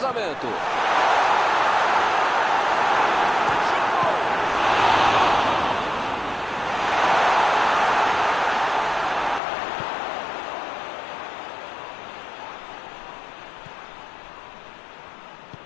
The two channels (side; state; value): right; drops out; at 9.4 s